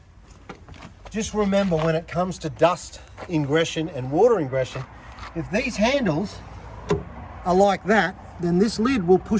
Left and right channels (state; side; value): identical; both; correlation 1.00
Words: Just remember, when it comes to dust ingression and water ingression, if these handles are like that, then this lid will